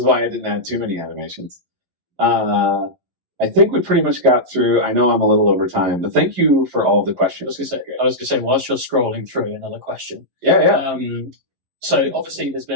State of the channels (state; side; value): late; left; 11 ms